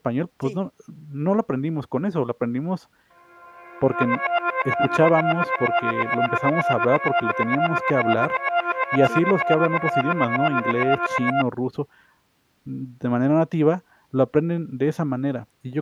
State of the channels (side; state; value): both; identical; correlation 1.00